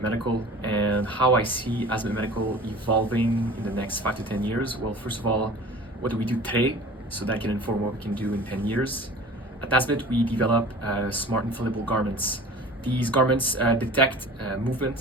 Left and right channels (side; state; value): both; normal; correlation 0.42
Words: Medical, and how I see Asmet Medical evolving in the next 5 to 10 years. Well, first of all, what do we do today so that can inform what we can do in 10 years? At Asmet, we develop smart inflatable garments. These garments detect